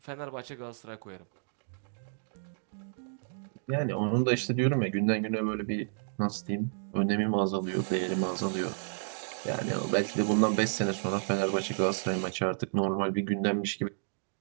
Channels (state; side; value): silent; left; digital silence